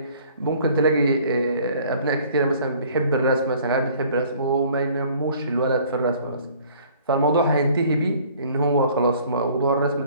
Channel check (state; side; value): inverted; both; correlation -0.55